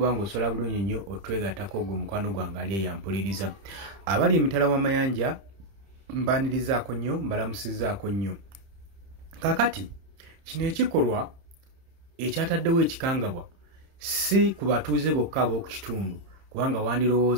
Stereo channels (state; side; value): late; left; 30 ms